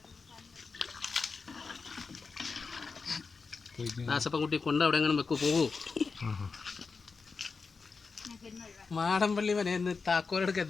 ദാസപ്പൻകുട്ടി കൊണ്ട് അവിടെ എങ്ങനെ വെക്കൂ പോകൂ. മാടമ്പള്ളി മനേന്ന് താക്കോലെടുക്ക്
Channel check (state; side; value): quieter; right; 4.7 dB